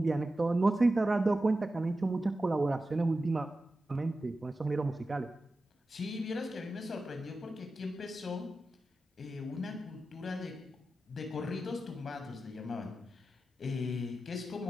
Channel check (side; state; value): both; normal; correlation 0.93